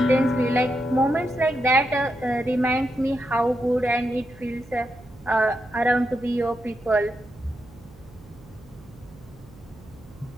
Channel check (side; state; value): right; noise; hum, 23 dB below the sound